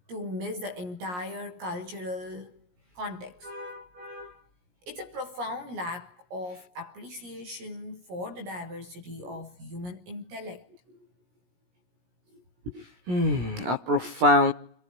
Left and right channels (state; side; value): late; left; 17 ms